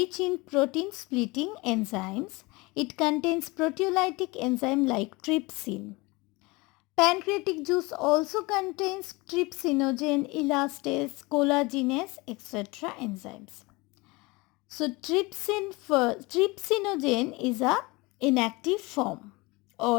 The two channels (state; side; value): quieter; right; 24.2 dB